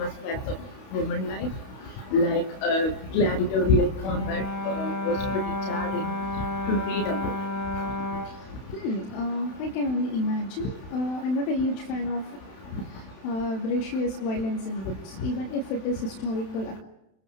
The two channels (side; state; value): right; late; 31 ms